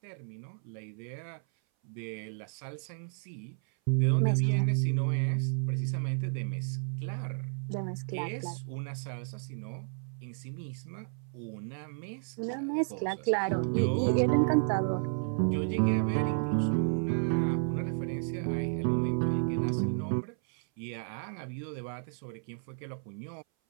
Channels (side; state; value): left; silent; 56 dB below the other